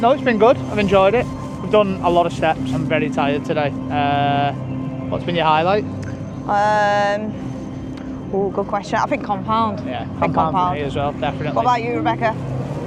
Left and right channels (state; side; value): identical; both; correlation 1.00